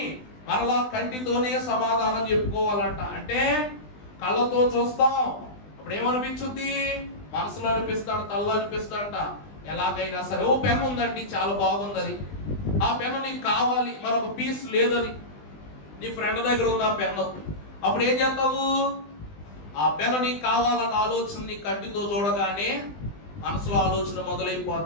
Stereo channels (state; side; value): late; right; 20 ms